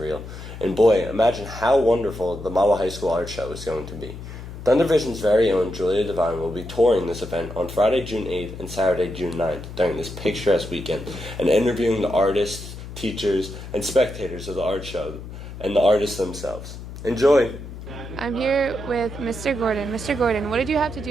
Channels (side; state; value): left; noise; hum, 12 dB below the sound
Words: And boy, imagine how wonderful the Mahwah High School Art Show is going to be. Thundervision's very own Julia Devine will be touring this event on Friday, June 8th and Saturday, June 9th during this picturesque weekend and interviewing the artists, teachers, and spectators of the art show and the artists themselves. Enjoy! I'm here with Mr. Gordon. Mr. Gordon, what did you have to